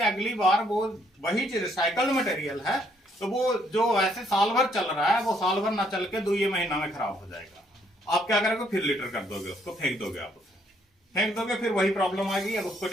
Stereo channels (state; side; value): normal; both; correlation 0.69